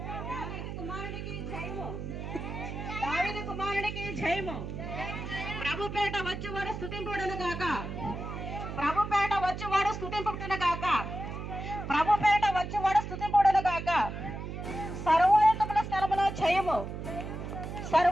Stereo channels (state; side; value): noise; right; hum, 7 dB below the sound